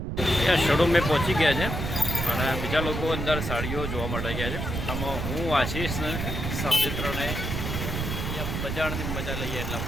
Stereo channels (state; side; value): noise; right; rumble, 3 dB below the sound